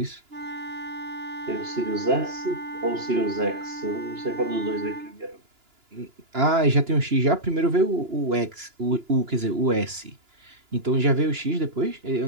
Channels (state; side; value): late; left; 2.9 ms